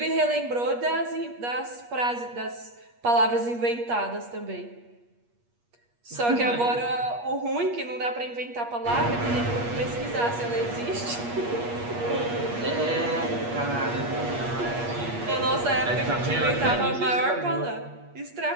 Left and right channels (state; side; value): late; left; 8.4 ms